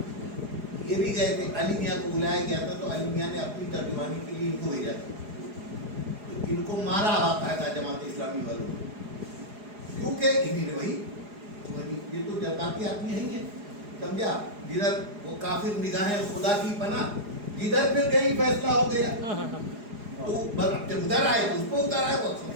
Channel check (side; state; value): left; late; 4.8 ms